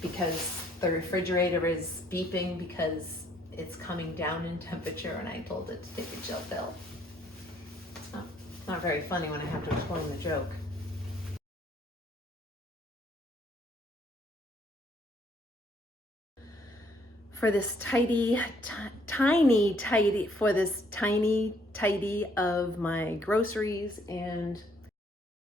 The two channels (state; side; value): normal; both; correlation 0.65